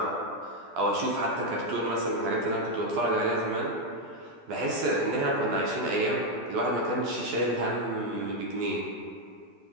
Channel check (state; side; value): late; left; 12 ms